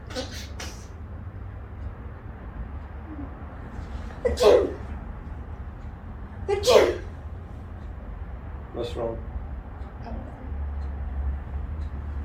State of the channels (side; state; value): both; identical; correlation 1.00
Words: Achoo! Achoo! What's wrong?